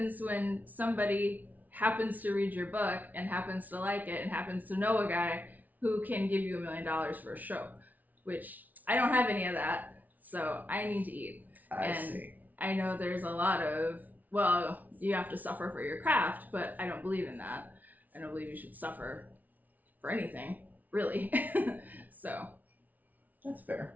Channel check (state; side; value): late; left; 0.077 ms